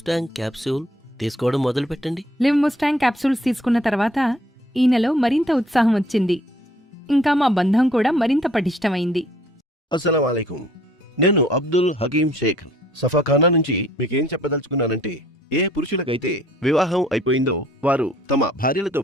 క్యాప్సూల్ తీసుకోవడం మొదలుపెట్టండి. లివ్ ముస్టాంగ్ క్యాప్సూల్స్ తీసుకున్న తర్వాత ఈ నెల మరింత ఉత్సాహం వచ్చింది. ఇంకా మా బంధం కూడా మరింత పటిష్టమైంది. అస్సలం వాలేకుం. నేను అబ్దుల్ హకీం షేక్ సఫాఖానా నుంచి మీకేం చెప్పదలుచుకున్నానంటే, ఏ పురుషులకైతే వివాహం అయిపోయిందో వారు తమ భార్యలతో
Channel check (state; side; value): normal; both; correlation 0.60